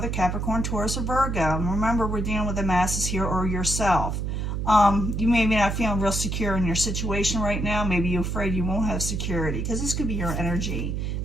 a Capricorn, Taurus, or Virgo. And remember, we're dealing with the masses here, or yourself. You may be not feeling real secure in your situation right now. Maybe you're afraid you won't have security, because this could be your energy.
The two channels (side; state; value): right; noise; hum, 2 dB below the sound